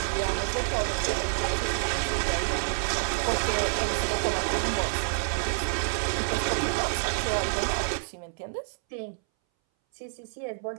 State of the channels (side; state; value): left; silent; 59 dB below the other